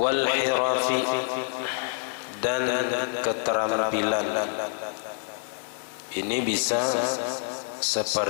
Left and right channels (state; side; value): silent; right; 60 dB below the other